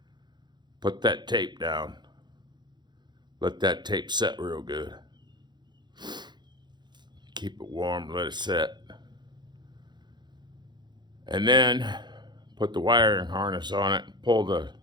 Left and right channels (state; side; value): late; left; 0.21 ms